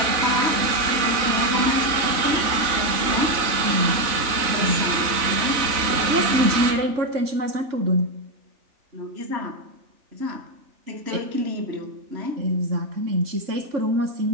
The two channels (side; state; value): left; late; 3.4 ms